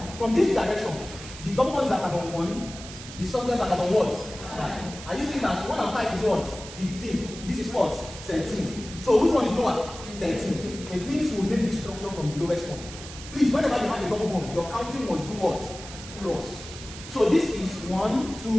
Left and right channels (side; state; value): right; noise; hiss, 13 dB below the sound